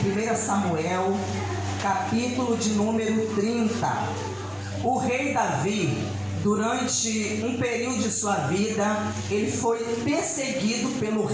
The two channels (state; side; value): identical; both; correlation 1.00